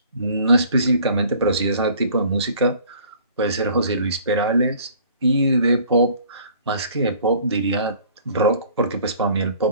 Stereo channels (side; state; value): both; inverted; correlation -0.53